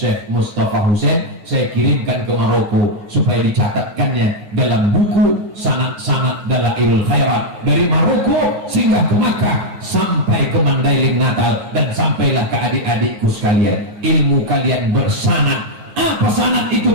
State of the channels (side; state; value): left; late; 9.3 ms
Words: Mustafa Hussein, saya kirimkan ke Maroko supaya dicatatkannya dalam buku sanad-sanad Dalailul Khairat dari Maroko sehingga ke Makkah, sampai ke Mandailing Natal, dan sampailah ke adik-adikku sekalian. Ilmu kalian bersanad. Apa sanad itu